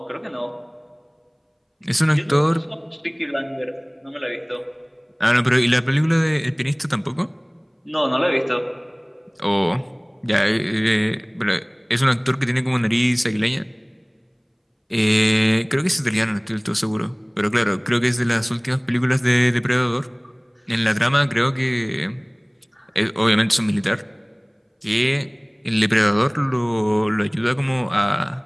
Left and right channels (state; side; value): identical; both; correlation 1.00